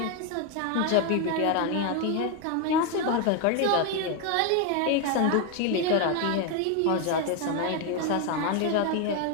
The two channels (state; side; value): different; both; correlation 0.02